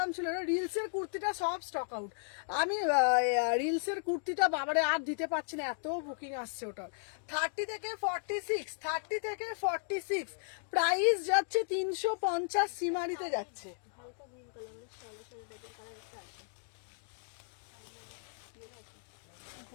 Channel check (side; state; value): right; silent; digital silence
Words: ছিল? রিলসের কুর্তিটা সব স্টক আউট। আমি রিলসের কুর্তিটা বাবারে আর দিতে পারছি না, এত বুকিং আসছে ওটার। 30 থেকে 46, 30 থেকে 46। প্রাইস যাচ্ছে 350, সীমারিতে যাচ্ছে।